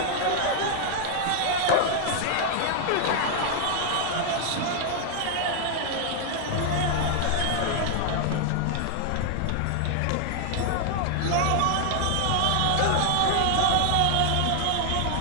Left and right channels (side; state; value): both; different; correlation 0.00